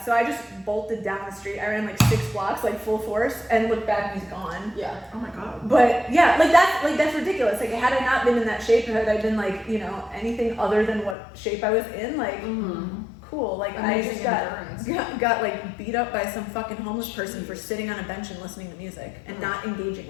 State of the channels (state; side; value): drops out; right; at 11.2 s